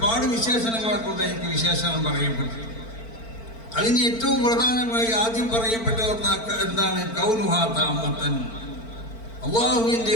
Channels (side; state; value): right; late; 4.4 ms